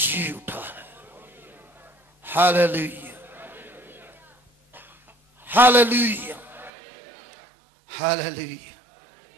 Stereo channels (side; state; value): left; drops out; at 6.7 s